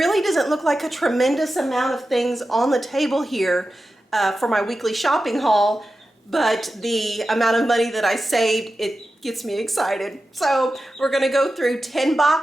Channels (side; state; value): both; normal; correlation 0.92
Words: doesn't look like a tremendous amount of things on the table here for my weekly shopping haul, but the amount of money that I saved, it gets me excited. So we're gonna go through 10